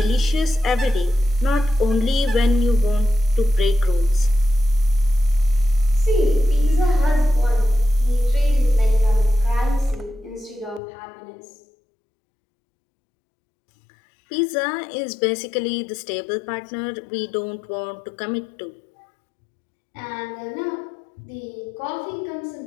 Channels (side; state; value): right; drops out; at 10.8 s